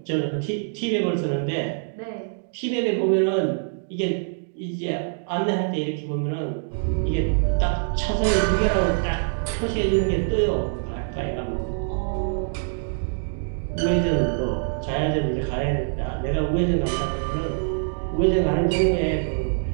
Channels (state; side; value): silent; left; digital silence